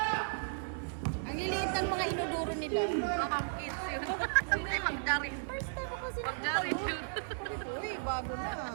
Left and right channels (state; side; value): silent; left; digital silence